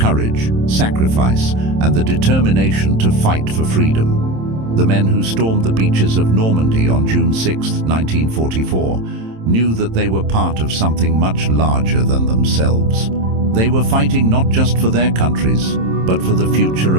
sacrifice, and the determination to fight for freedom. The men who stormed the beaches of Normandy on June 6, 1944, knew that they were part of something much larger than themselves. They were fighting not just for their countries, but for the future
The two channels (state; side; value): late; left; 27 ms